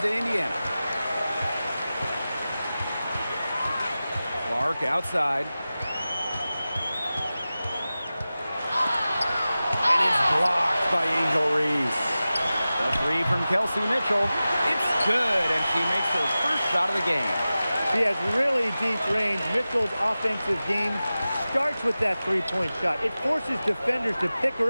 Indiana. Clark outside. And it's blocked by Angel Reese. The three from Kelsey Mitchell. It's good, and she makes her first shot of the game. She has really deep range. Mitchell's offensive game starts with that three-point shot. It forces defenders to pick her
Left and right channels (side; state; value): both; inverted; correlation -0.95